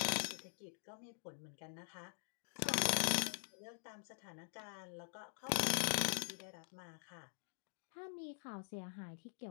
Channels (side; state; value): right; silent; digital silence